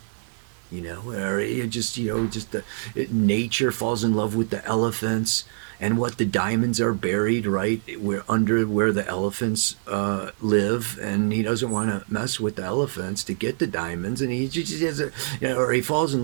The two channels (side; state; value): left; silent; digital silence